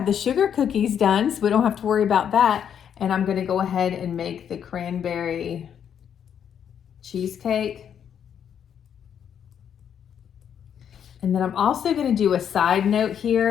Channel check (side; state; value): right; quieter; 8.6 dB